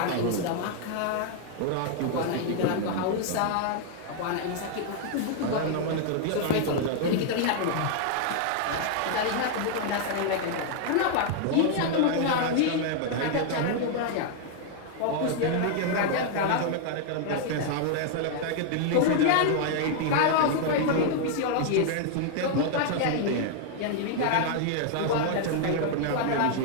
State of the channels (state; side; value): different; both; correlation 0.00